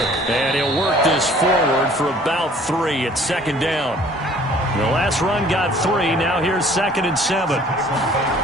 And he'll work this forward for about 3 at second down. The last run got 3. Now here's 2nd and 7.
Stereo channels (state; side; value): normal; both; correlation 0.53